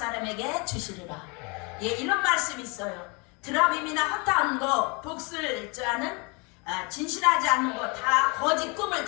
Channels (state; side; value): quieter; right; 30.6 dB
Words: 주시리라. 이런 말씀이 있어요. 드라빔이나 허탄 거 복슬자는 진실하지 않는 거 다 거짓 꿈을